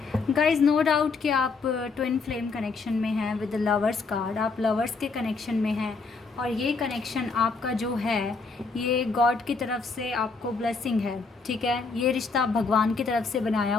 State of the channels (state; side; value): quieter; right; 4.4 dB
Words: गाइज, नो डाउट कि आप ट्विन फ्लेम कनेक्शन में हैं विद द लवर्स कार्ड। आप लवर्स के कनेक्शन में हैं और ये कनेक्शन आपका जो है ये गॉड की तरफ से आपको ब्लेसिंग है। ठीक है, ये रिश्ता भगवान की तरफ से बनाया